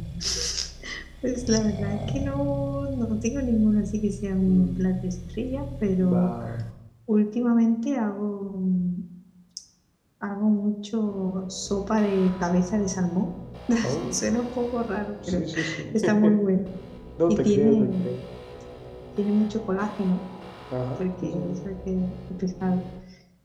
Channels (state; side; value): identical; both; correlation 1.00